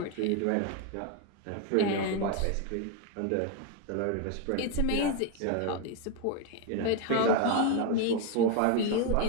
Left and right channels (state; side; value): different; both; correlation 0.02